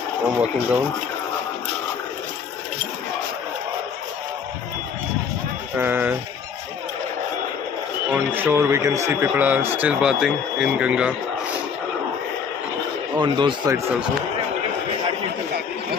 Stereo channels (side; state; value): right; quieter; 6.4 dB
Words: I'm walking down. On shore we can see people are still bathing in Ganga. On those sides also.